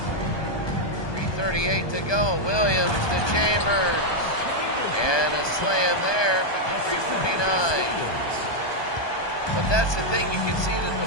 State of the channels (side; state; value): right; late; 1.2 ms